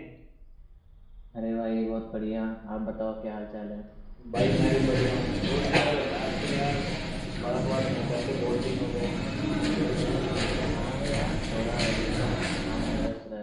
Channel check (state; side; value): identical; both; correlation 1.00